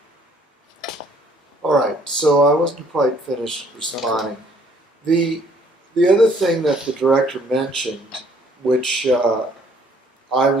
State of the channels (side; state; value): both; normal; correlation 0.62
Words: All right, so I wasn't quite finished responding. The other thing that the director mentioned, which I